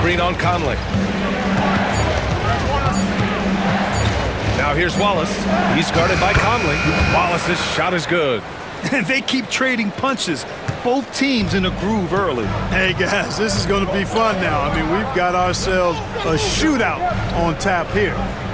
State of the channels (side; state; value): both; identical; correlation 1.00